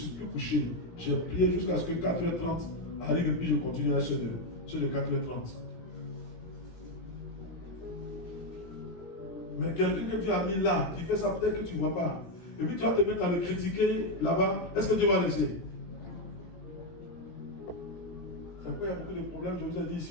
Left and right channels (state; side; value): late; right; 17 ms